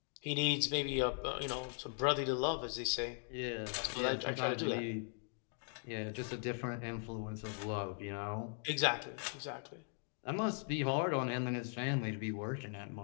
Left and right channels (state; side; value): silent; right; 51 dB below the other